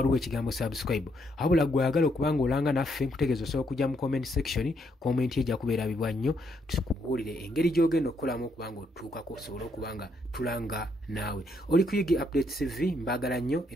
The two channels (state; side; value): normal; both; correlation 0.74